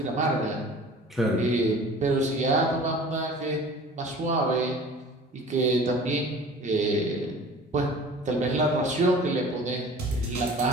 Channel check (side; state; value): both; normal; correlation 0.44